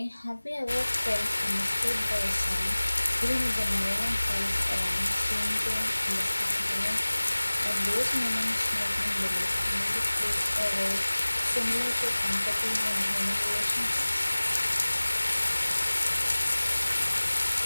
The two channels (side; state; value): both; inverted; correlation -1.00